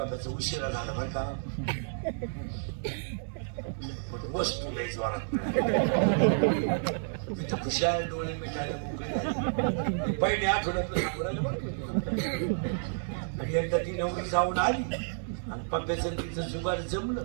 उशिरा झाला बरं का वस्तू लई जोरात मी तर खुशाल डोळे मिठायला मोकळे झाले पहिले आठवड्यातलं सांगू बरं आणि एकदा ती नवरी जाऊन आली आणि पप्प्याचं तिचं जुगाड जमलं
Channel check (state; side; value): silent; left; 58 dB below the other